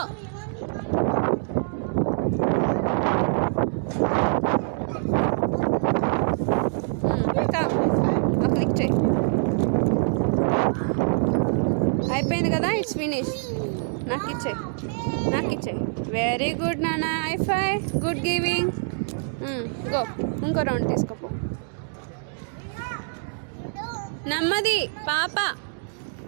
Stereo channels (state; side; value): silent; left; digital silence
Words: క్లిక్ చేయి. అయిపోయింది కదా, ఇట్స్ ఫినిష్. నాకు ఇచ్చే. వెరీ గుడ్ నాన్న, ఐఫై, గుడ్ గివింగ్. గో, ఇంకో రౌండ్ తీసుకోపో. నెమ్మది పాప,